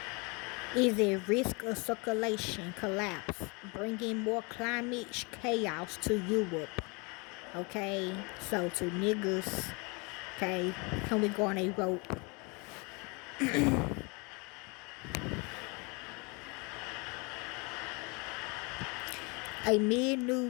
is at risk of circulation collapse, bringing more climate chaos to Europe. Okay, so to niggas, okay, can we go on a rope? Amid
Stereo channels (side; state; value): right; quieter; 30.0 dB